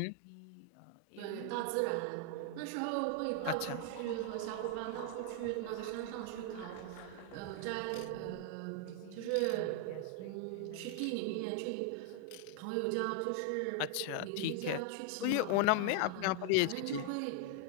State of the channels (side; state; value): both; different; correlation 0.00